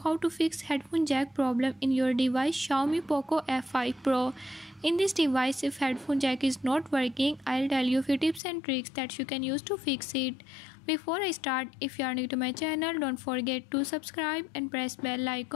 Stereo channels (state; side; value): drops out; right; at 8.4 s